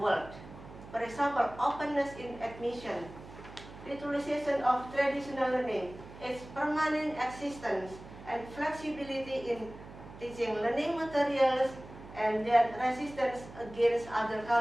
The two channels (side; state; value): right; noise; hum, 16 dB below the sound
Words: For example, openness in admission, utilization of traditional learning, its permanent existence, and flexibility in teaching learning materials, and their resistance against other